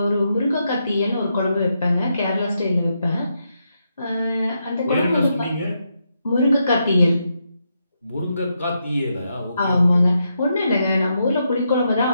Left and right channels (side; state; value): both; inverted; correlation -0.82